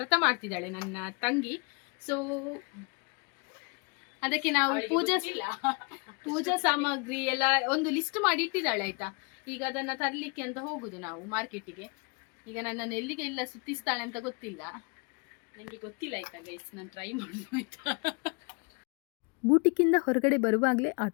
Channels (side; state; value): right; quieter; 32.9 dB